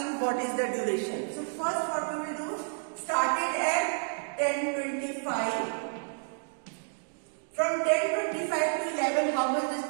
what is the duration. So first what we will do, started at 10:25. From 10:25 to 11, how much this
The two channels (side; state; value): left; silent; digital silence